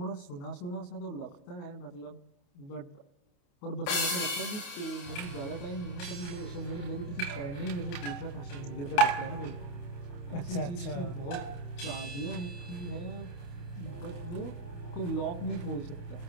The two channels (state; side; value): late; right; 29 ms